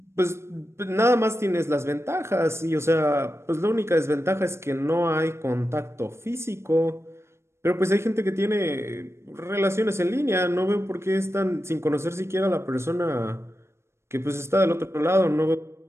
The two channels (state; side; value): late; left; 0.13 ms